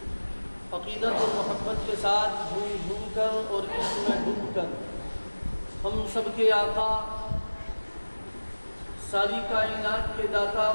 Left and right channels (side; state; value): both; inverted; correlation -1.00